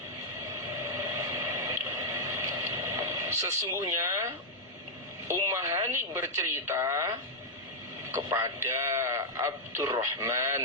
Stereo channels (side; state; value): both; normal; correlation -0.03